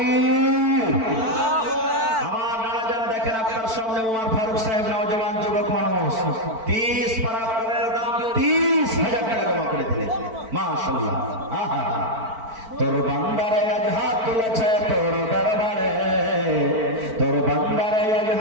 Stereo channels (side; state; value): left; late; 4.5 ms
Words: আমার নানা জান দেখেন আপনার সামনে ওমর ফারুক সাহেব নওজওয়ান যুবক মানুষ 30 পারা করে দাম 30,000 টাকা জমা করে দিলেন। মাশাআল্লাহ। তোর বান্দারে আজ হাত তুলেছে তোর দরবারে, তোর বান্দারে আজ